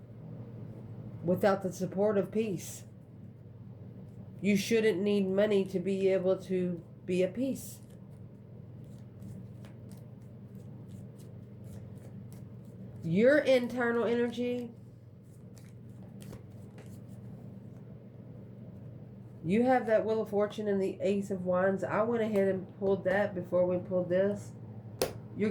Without the support of peace. You shouldn't need money to be able to be at peace. Your internal energy. You have that Wheel of Fortune and the Ace of Wands. I went ahead and pulled that before we pulled this. You're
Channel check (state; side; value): identical; both; correlation 1.00